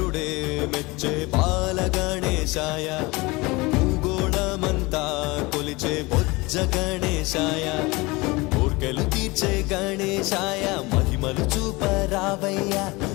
మెచ్చే బాల గణేశాయ భూగోళమంతా కొలిచే బొజ్జ గణేశాయ కోర్కెలు తీర్చే గణేశాయ మహిమలు చూపరావయ్య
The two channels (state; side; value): quieter; right; 23.6 dB